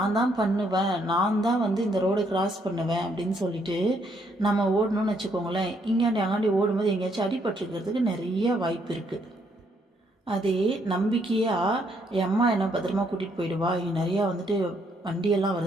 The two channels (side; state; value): both; normal; correlation 0.72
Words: தான் பண்ணுவேன், நான் தான் வந்து இந்த ரோடை கிராஸ் பண்ணுவேன் அப்படின்னு சொல்லிட்டு நம்ம ஓடணும்னு வச்சுக்கோங்களேன். இங்காண்டி அங்காண்டி ஓடும்போது எங்கேயாச்சும் அடிபட்டுருக்கிறதுக்கு நிறைய வாய்ப்பு இருக்குது. அதே நம்பிக்கையாக என் அம்மா என்ன பத்திரமா கூட்டிகிட்டு போயிடுவா, இங்கே நிறையா வந்துட்டு வண்டியெல்லாம்